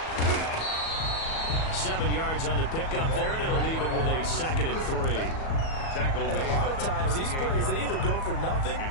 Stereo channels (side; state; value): right; late; 37 ms